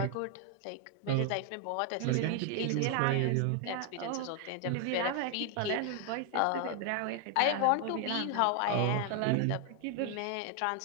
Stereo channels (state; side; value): different; both; correlation 0.00